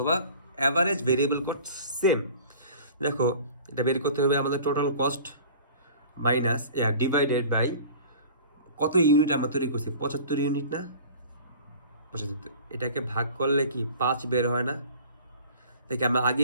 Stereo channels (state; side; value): inverted; both; correlation -0.44